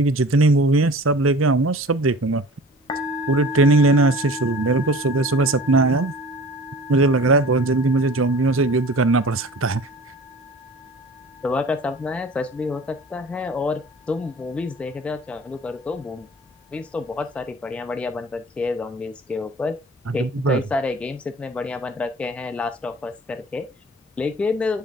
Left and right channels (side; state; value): both; normal; correlation 0.43